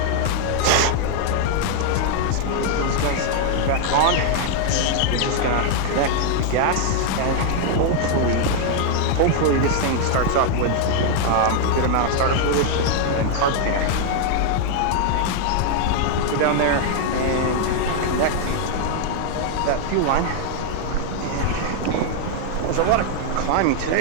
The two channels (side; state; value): both; different; correlation 0.00